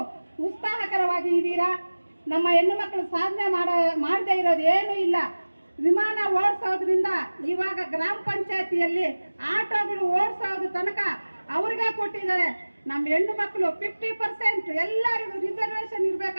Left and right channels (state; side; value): inverted; both; correlation -1.00